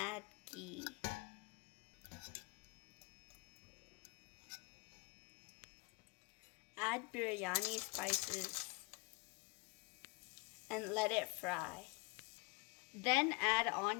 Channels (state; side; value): quieter; right; 28.1 dB